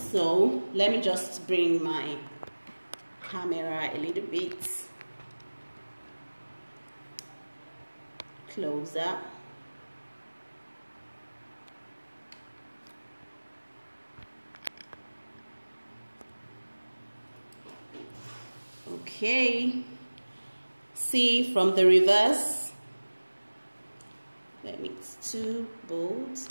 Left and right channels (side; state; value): both; inverted; correlation -1.00